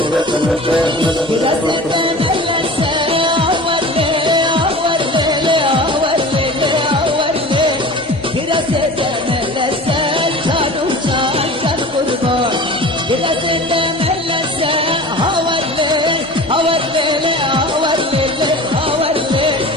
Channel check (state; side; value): normal; both; correlation 0.38